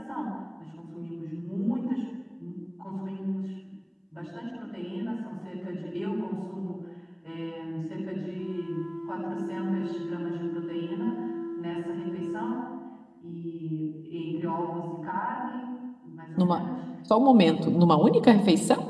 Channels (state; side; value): identical; both; correlation 1.00